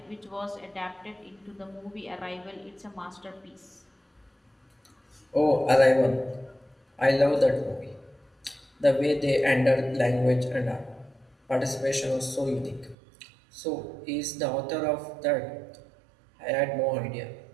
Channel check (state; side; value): drops out; left; at 13.0 s